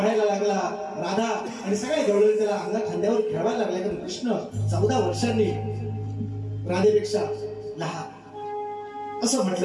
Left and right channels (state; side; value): identical; both; correlation 1.00